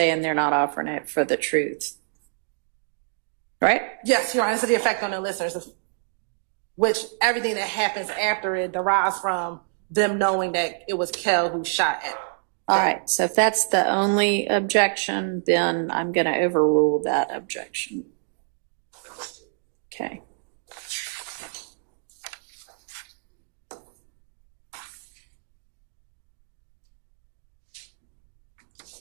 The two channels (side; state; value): left; silent; digital silence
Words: they're not offering it for the truth. Right? Yes, Your Honor, so the effect on the listeners, which everything that happens after it derives from them knowing that it was Kel who shot at them. All right, so if that's the only objection, then I'm going to overrule that objection. Okay.